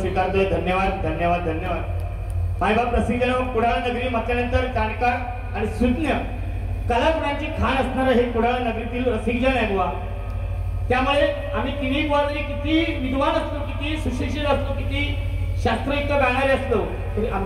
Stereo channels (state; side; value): identical; both; correlation 1.00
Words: धन्यवाद, धन्यवाद, धन्यवाद. मायबाप रसिकजन, कुडाळ नगरी म्हटल्यानंतर जाणकार आणि सुज्ञ कलागुणांची खाण असणारं हे कुडाळ नगरीतील रसिकजन आहे बुवा. त्यामुळे आम्ही तिन्ही बुवा जरी किती विद्वान असलो, किती सुशिक्षित असलो, किती शास्त्रयुक्त गाणारे असलो, तरी